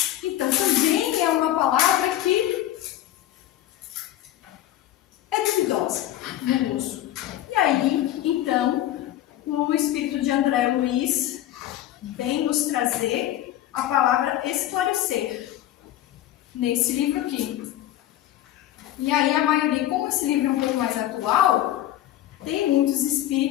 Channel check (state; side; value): quieter; right; 13.3 dB